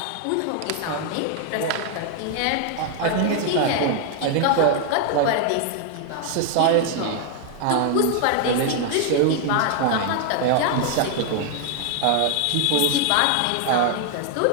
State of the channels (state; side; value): different; both; correlation 0.00